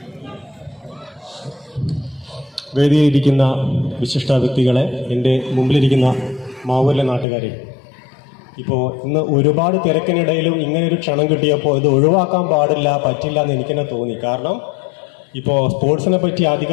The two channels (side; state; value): right; drops out; at 7.2 s